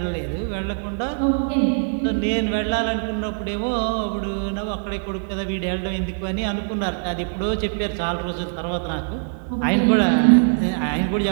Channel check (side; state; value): left; silent; 56 dB below the other